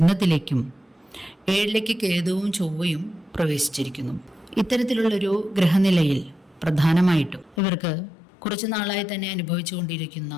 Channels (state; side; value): drops out; right; at 7.6 s